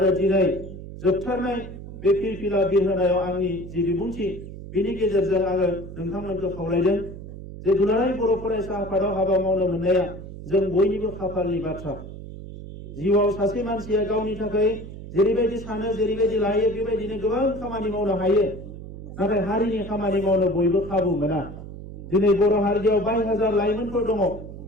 दिनै जोबथारनाय बे फिरफिला बिरहोनायाव आंनि जि बिबुंथि बिनि गेजेरजों आङो नोंथांमोनखौ खावलायदों जे दुलाराय बर' फरायसा आफादाव हाबा मावनो मोननाया जों बयनिबो खाफालनि बाथ्रा। जिउआव सासे मानसिया गावनि थाखाय जेरैबायदि सानो, जेरैबायदि लायो, बेबायदिनो गोबां खामानि मावनो हायो, नाथाय हारिनि खामानि मावनो बयबो खाबु मोना। दिनै बर' हारियाव 22,000 लाइमोनफोर दङ,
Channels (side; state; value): right; noise; hum, 12 dB below the sound